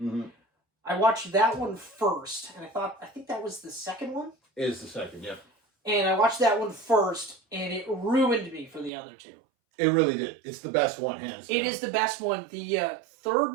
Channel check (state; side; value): drops out; left; at 8.9 s